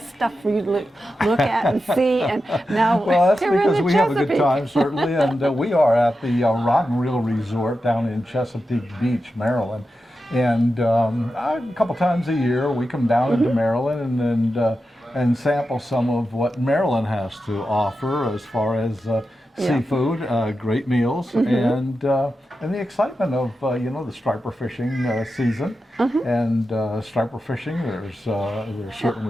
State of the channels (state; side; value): normal; both; correlation 0.90